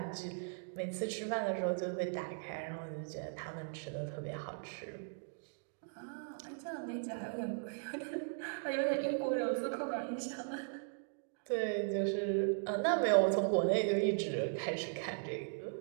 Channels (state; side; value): silent; left; digital silence